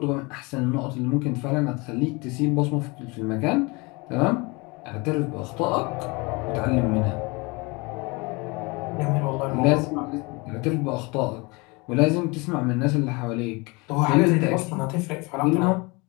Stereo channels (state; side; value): quieter; right; 26.8 dB